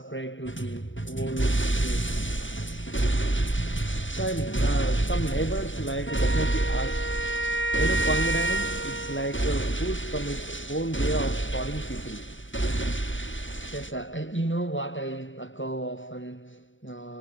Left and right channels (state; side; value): late; right; 0.55 ms